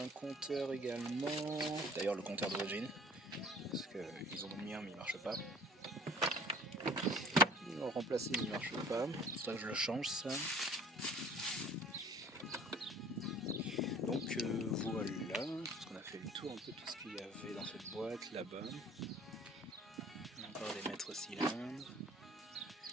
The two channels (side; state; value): both; normal; correlation 0.50